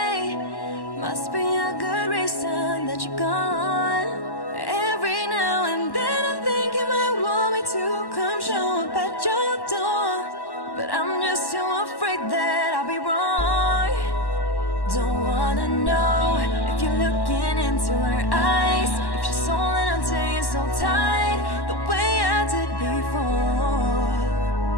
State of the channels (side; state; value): right; late; 1.1 ms